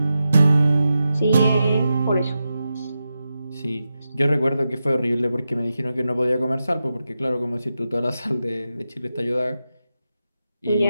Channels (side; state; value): both; inverted; correlation -0.90